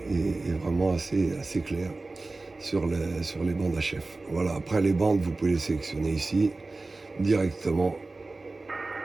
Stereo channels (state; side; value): quieter; left; 3.3 dB